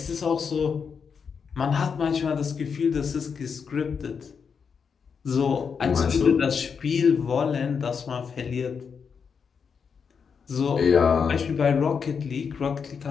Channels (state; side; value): quieter; right; 6.2 dB